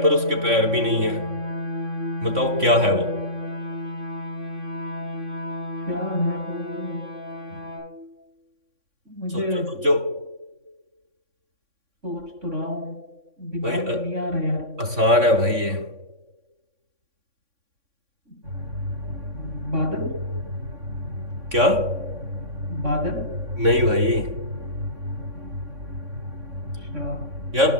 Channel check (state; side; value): late; left; 3.6 ms